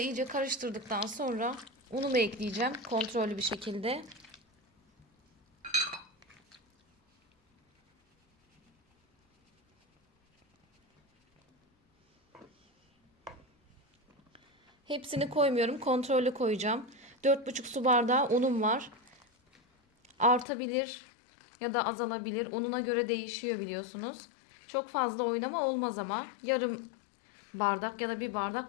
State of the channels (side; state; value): right; drops out; at 20.5 s